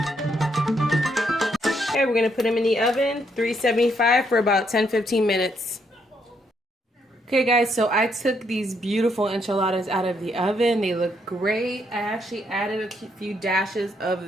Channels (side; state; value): both; normal; correlation 0.74